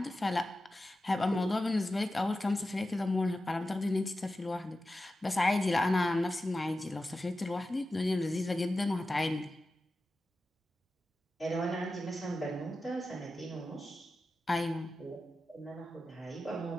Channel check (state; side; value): normal; both; correlation 0.93